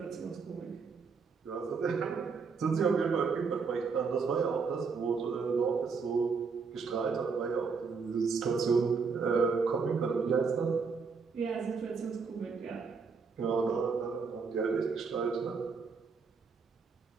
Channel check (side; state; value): left; quieter; 5.2 dB